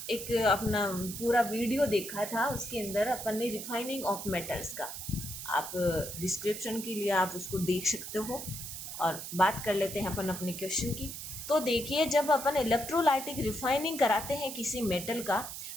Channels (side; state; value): right; noise; hiss, 8 dB below the sound